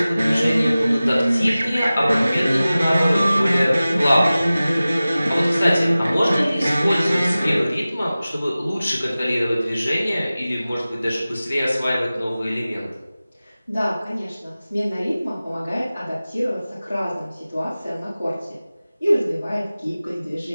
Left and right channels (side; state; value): both; inverted; correlation -0.97